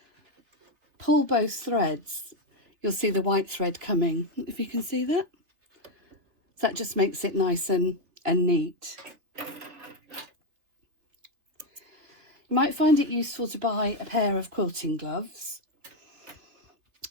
pull both threads you'll see the white thread coming, if you can see that. So that just makes it nice and neat. You might find it useful to buy a pair of quilting gloves.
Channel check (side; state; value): left; late; 3.5 ms